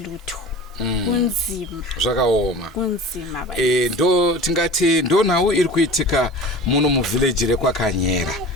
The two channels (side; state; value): both; normal; correlation 0.38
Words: Kunzima. Zvakaoma. Kunzima ndo tingati ndo nhau iri kuitika muno muvillage rekwakanyera.